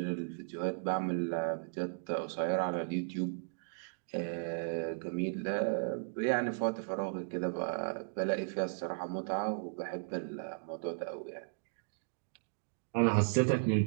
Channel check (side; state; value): left; silent; digital silence